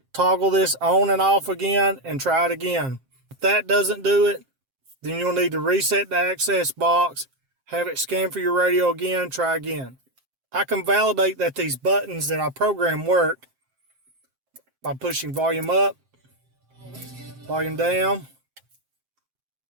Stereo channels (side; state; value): left; late; 7.6 ms